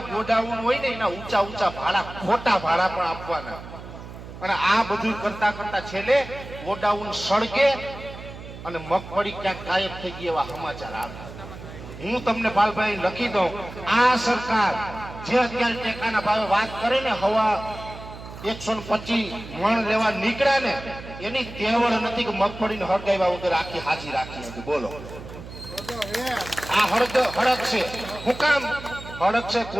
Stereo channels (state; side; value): noise; right; hum, 13 dB below the sound